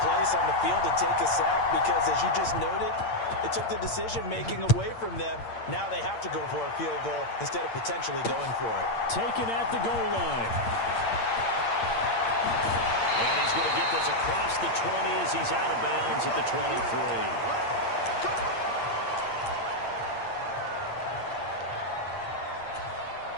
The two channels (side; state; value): right; late; 8.7 ms